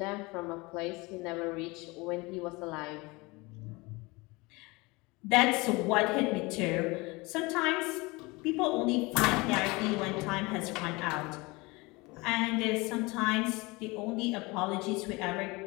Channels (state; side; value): quieter; right; 24.5 dB